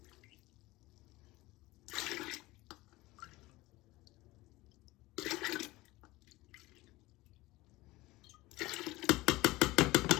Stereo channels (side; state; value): right; quieter; 19.8 dB